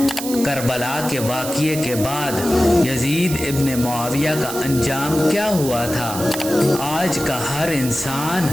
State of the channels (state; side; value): noise; right; hiss, 8 dB below the sound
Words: کربلا کے واقعے کے بعد یزید ابن معاویہ کا انجام کیا ہوا تھا؟ آج کا ہر انسان